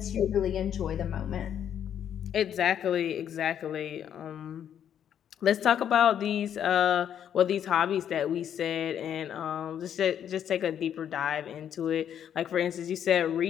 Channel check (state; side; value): quieter; right; 9.4 dB